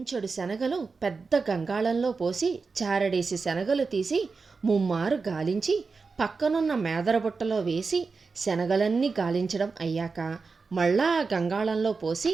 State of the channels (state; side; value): quieter; left; 4.6 dB